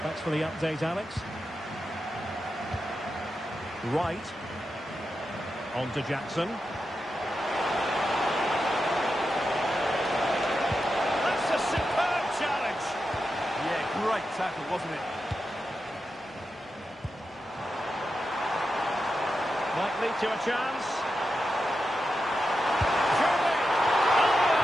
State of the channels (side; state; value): both; normal; correlation 0.89